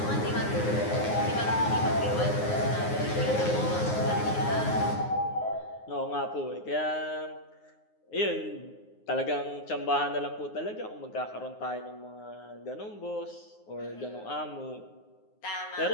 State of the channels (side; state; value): right; late; 9.6 ms